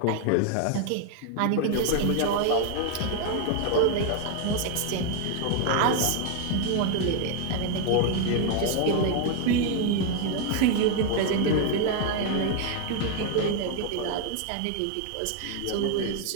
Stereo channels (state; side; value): different; both; correlation 0.00